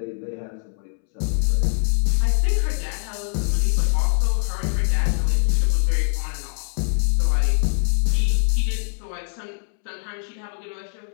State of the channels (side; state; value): right; silent; 64 dB below the other